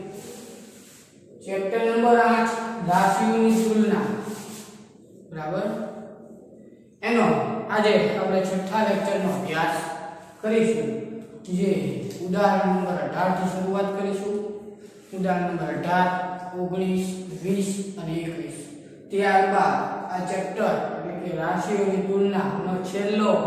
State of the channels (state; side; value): identical; both; correlation 1.00